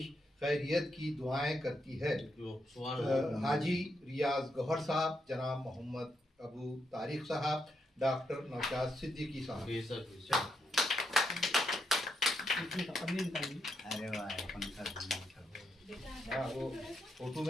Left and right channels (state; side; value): normal; both; correlation 0.81